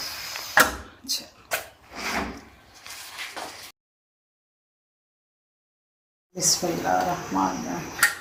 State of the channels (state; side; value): identical; both; correlation 1.00